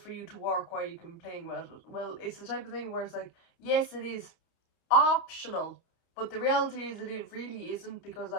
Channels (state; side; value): late; right; 29 ms